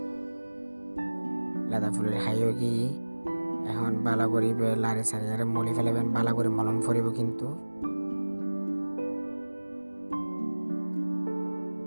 লাদা ফুলের হাইও কি এখন ভালো করিবে লাড়ি সারিয়ে মলি ফেলাবেন। ভালো করে মলম ফরিব কিন্তু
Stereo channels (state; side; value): inverted; both; correlation -1.00